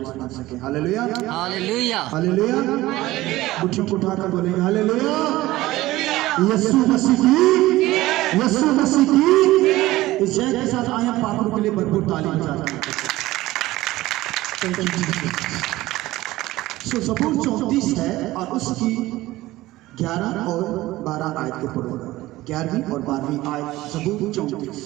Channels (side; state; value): left; quieter; 17.4 dB